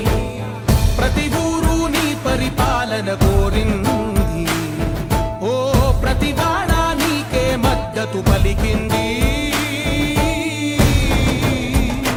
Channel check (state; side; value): identical; both; correlation 1.00